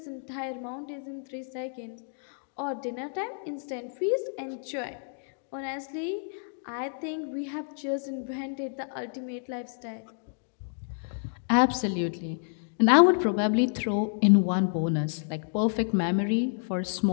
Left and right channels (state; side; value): silent; right; digital silence